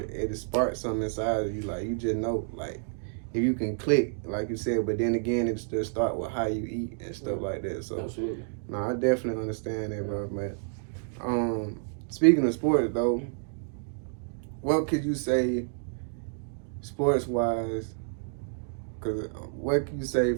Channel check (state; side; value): silent; left; digital silence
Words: sparks something inside of you. Like you just know, like if you can click, like you said, but then again, it still start with how you eat and stuff like that. So absolutely. No, I definitely understand that, bro. But speaking of sports though, what could you say sports wise? Cause what can you say